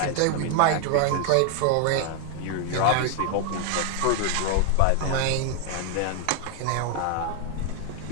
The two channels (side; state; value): both; different; correlation 0.00